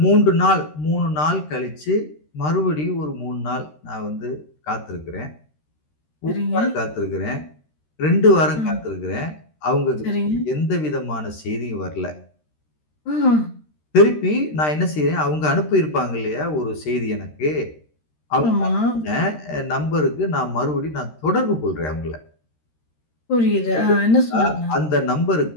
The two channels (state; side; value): late; right; 13 ms